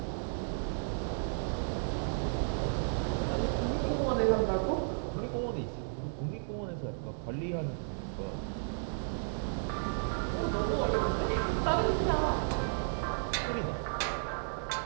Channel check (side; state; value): left; silent; digital silence